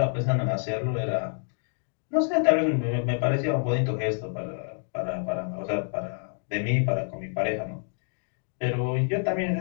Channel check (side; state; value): right; silent; 60 dB below the other